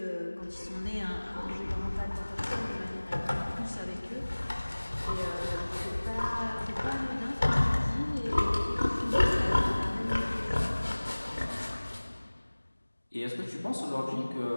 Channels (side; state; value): both; inverted; correlation -1.00